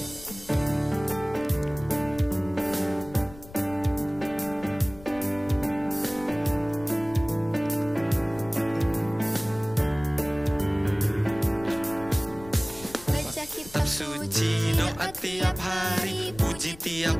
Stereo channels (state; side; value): noise; left; rumble, 18 dB below the sound